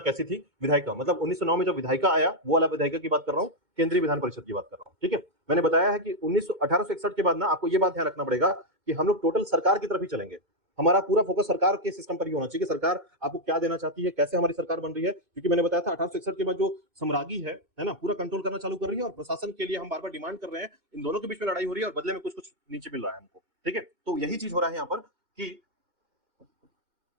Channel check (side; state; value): left; late; 2.2 ms